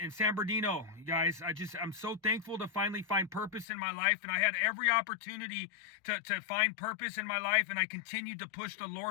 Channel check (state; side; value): drops out; right; at 3.7 s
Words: San Bernardino, you guys. I'm so thankful to finally find purpose in my life, and I had every opportunity to find purpose in my life, and I continued to push the